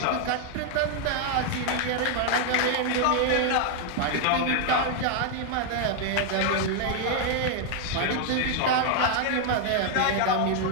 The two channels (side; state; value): both; different; correlation 0.00